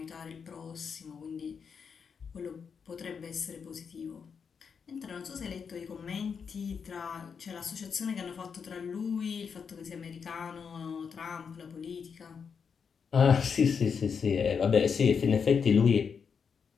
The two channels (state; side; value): quieter; right; 6.3 dB